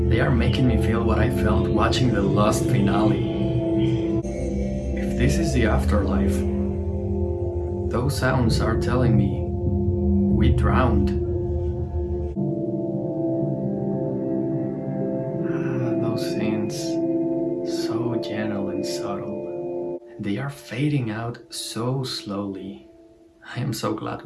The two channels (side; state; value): both; identical; correlation 1.00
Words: They are making me feel what I felt watching the Lost finale. If this is the afterlife, those sounds are telling me we drowned. Those scenes, so gentle and subtle. They are fading out so slowly. I am so glad